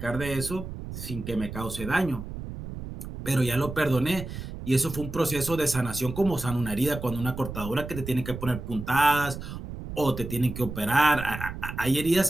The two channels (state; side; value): noise; right; rumble, 9 dB below the sound